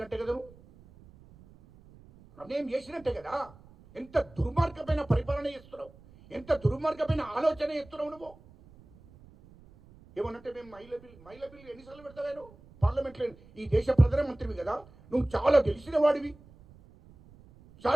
కదా నువ్వు? అన్యాయం చేసినట్టే కదా. ఎంత దుర్మార్గమైన పరిపాలన చేస్తున్నావు, ఎంత దుర్మార్గమైన ఆలోచన చేస్తున్నావు నువ్వు. ఏమనంటే మేము మహిళ బిల్లు ఎన్నిసార్లు పెడతావేను పార్లమెంట్లో? ఈ దేశ ప్రధానమంత్రివి కదా, నువ్వు చాలా తెలిసిన వాడివి,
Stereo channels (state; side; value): noise; right; rumble, 24 dB below the sound